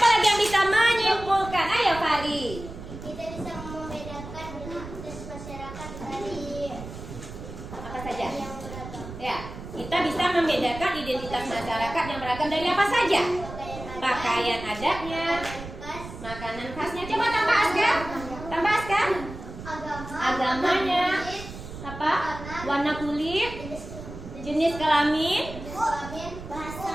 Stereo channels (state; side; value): noise; right; rumble, 12 dB below the sound